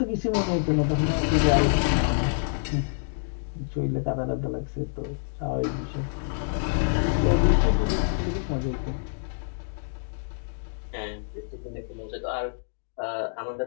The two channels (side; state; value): right; silent; digital silence